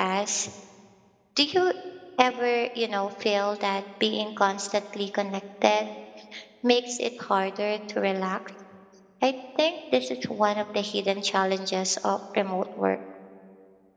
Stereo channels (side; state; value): both; identical; correlation 1.00